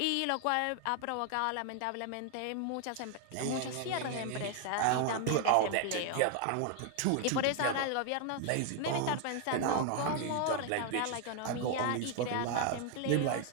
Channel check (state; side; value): different; both; correlation 0.00